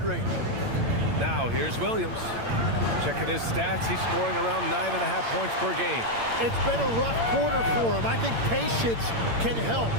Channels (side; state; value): left; late; 8.8 ms